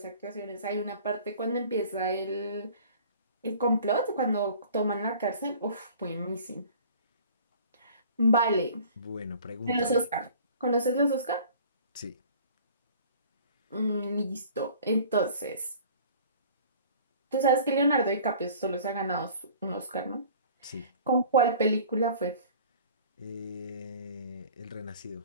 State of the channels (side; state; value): both; inverted; correlation -0.48